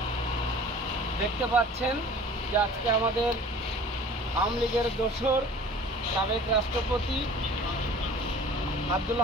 দেখতে পাচ্ছেন যে আজকে আমাদের আওয়ামী লীগের দোসর সাবেক রাষ্ট্রপতি আব্দুল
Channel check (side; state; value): both; normal; correlation 0.45